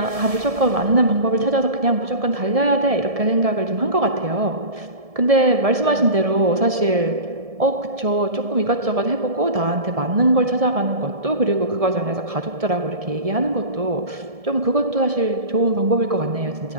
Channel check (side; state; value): left; late; 1.7 ms